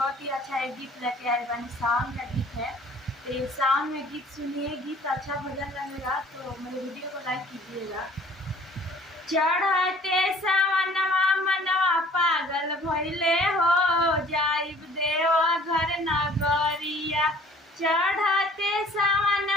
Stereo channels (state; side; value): normal; both; correlation 0.52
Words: ही अच्छा एक गीत लेके आए बानी। सावन का गीत है, तो ये सावन में गीत सुनिए। गीत अच्छा भजन लगेगा तो मेरे वीडियो को लाइक कीजिएगा। चढ़ते सावनवा मनवा पागल भइले हो, जाइब देव घर नगरिया। चढ़ते